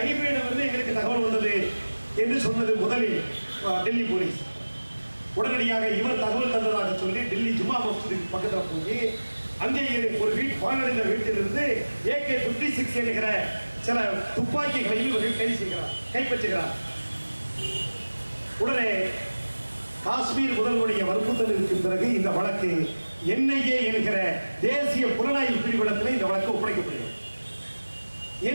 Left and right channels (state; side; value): inverted; both; correlation -1.00